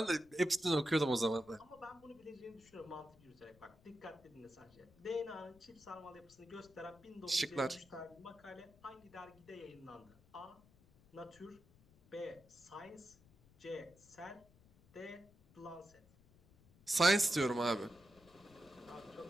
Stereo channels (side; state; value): left; noise; rumble, 26 dB below the sound